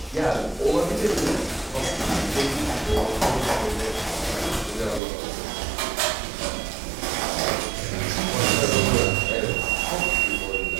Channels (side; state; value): left; drops out; at 5.0 s